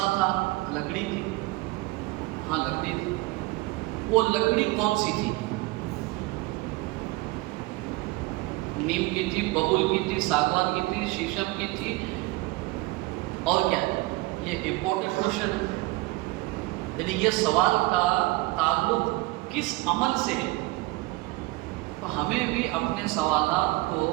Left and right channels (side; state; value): left; quieter; 21.4 dB